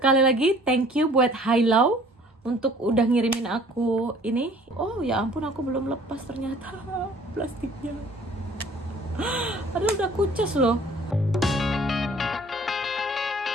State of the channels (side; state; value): both; normal; correlation 0.53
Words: lagi thank you buat Hilau untuk udah ngirimin aku ini. Oh ya ampun, aku belum lepas ternyata plastiknya. Aduh, udah kucus loh.